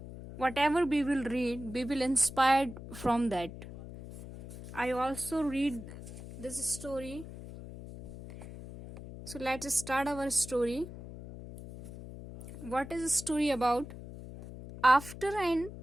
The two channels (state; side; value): noise; left; hum, 13 dB below the sound